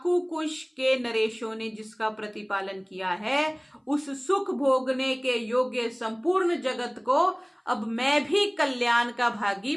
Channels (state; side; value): identical; both; correlation 1.00